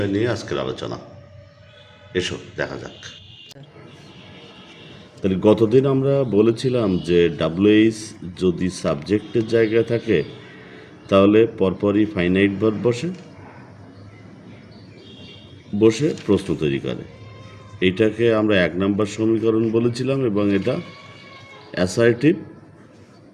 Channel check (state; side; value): identical; both; correlation 1.00